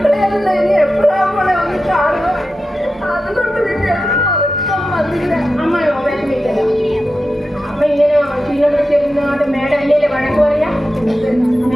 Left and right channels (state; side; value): normal; both; correlation 0.91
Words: ഇനി എപ്പോഴാ മോളെ ഒന്ന് കാണുക? അതുകൊണ്ട് പിന്നെ വന്നില്ല. അമ്മ വിഷമിക്കല. അമ്മ ഇങ്ങനെ ക്ഷീണിച്ചിരുന്നോണ്ട് മേഡം അല്ലേ വഴക്ക് പറയാ?